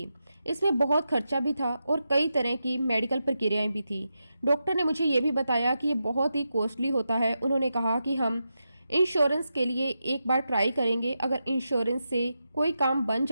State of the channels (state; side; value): inverted; both; correlation -0.88